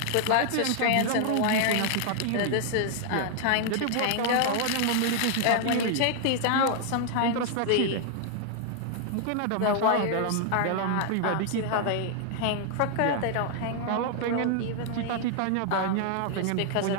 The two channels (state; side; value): different; both; correlation 0.00